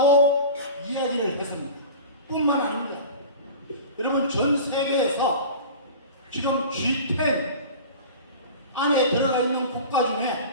이야기를 했습니다. 뿐만 아닙니다. 여러분 전 세계에서 지금 G10 안에 들어가 있는 국가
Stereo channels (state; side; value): inverted; both; correlation -0.36